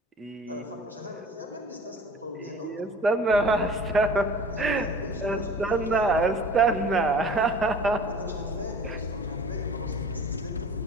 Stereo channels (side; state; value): both; normal; correlation 0.44